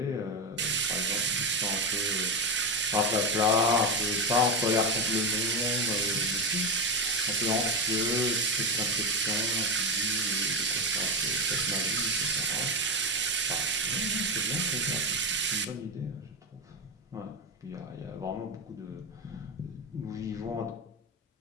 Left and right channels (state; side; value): normal; both; correlation 0.13